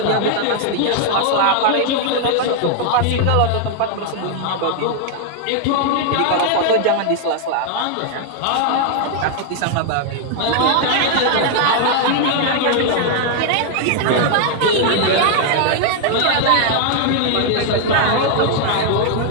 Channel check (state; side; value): different; both; correlation 0.00